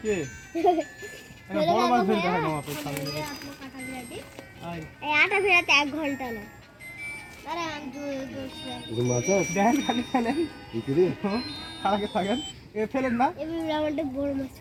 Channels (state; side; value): identical; both; correlation 1.00